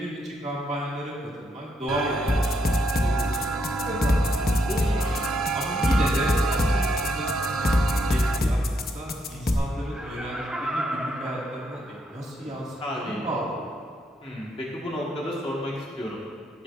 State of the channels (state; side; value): normal; both; correlation 0.76